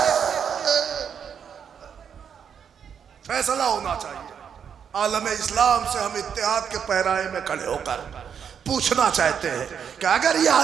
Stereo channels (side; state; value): left; quieter; 7.6 dB